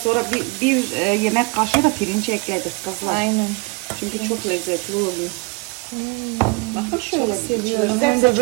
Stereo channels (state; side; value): quieter; left; 29.9 dB